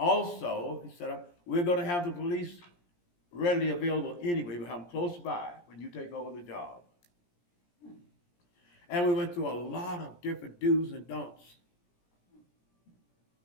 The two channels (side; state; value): right; late; 17 ms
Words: he said, we're going to have the police readily available anyway. We'll have them close by when you take over the job. And we went through a lot of different do's and don'ts.